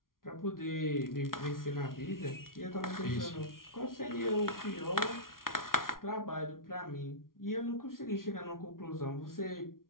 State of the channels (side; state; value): right; late; 0.92 ms